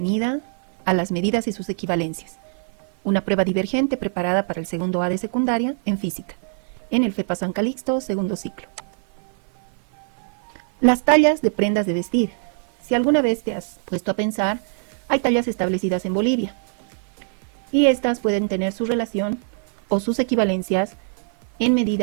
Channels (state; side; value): silent; left; 57 dB below the other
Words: a las medidas y sus equivalencias, una prueba divergente preparada para el segundo A de secundaria en física, en el FEPA San Calixto, segundo ciclo. Las tallas de prendas de vestir. Si alguna vez te has puesto a pensar, hay tallas establecidas en Bolivia, y estas pueden tener su relación o sus equivalencias en